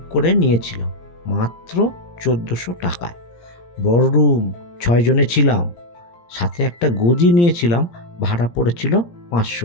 করে নিয়েছিলাম মাত্র 1400 টাকায়। বড় রুম, 6 জনে ছিলাম, সাথে একটা গদি নিয়েছিলাম, ভাড়া পড়েছিল 500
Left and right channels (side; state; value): right; late; 17 ms